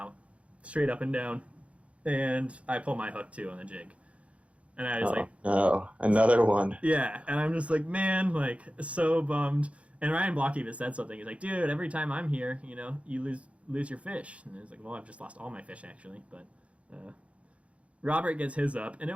straight up and down. And I pull my hook too on the jig. And I was no, another one. Yeah, and I'm just like, man, like, so bummed. And Ryan Block even said something. He's like, dude, every time I'm here, you know, you lose your fish. And I was like, well, I've just lost all my fish, actually. But Robert gets his up, and it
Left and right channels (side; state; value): left; late; 0.063 ms